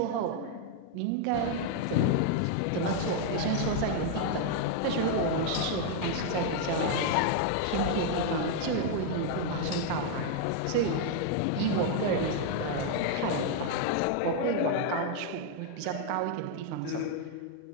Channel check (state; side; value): different; both; correlation 0.00